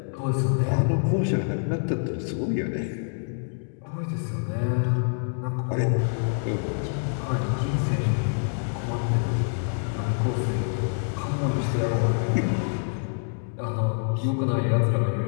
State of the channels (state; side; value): silent; right; digital silence